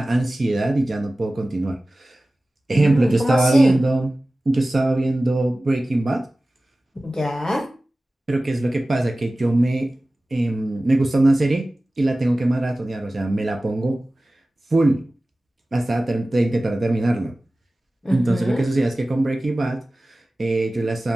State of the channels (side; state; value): both; normal; correlation 0.97